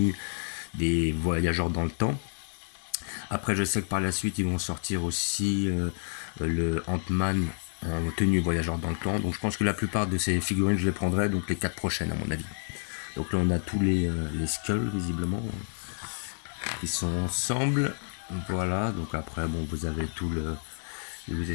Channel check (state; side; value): silent; right; 58 dB below the other